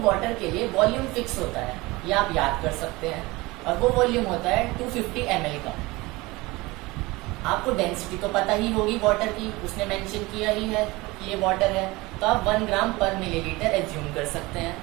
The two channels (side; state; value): left; quieter; 22.0 dB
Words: वाटर के लिए वॉल्यूम फिक्स होता है, ये आप याद कर सकते हैं, और वो वॉल्यूम होता है 250 ml का। आपको डेंसिटी तो पता ही होगी वाटर की, उसने मेंशन किया ही है कि ये वाटर है, तो आप 1 ग्राम पर मिलीलीटर एज्यूम कर सकते हैं।